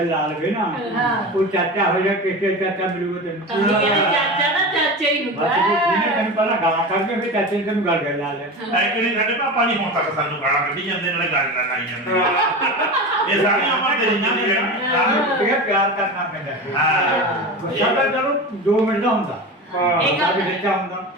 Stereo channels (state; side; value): normal; both; correlation 0.27